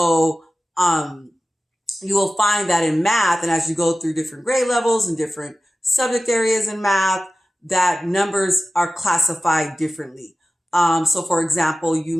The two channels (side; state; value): both; normal; correlation 0.95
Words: you will find that in math, and as you go through different grade levels and different subject areas in math, that numbers are classified differently. So for example, you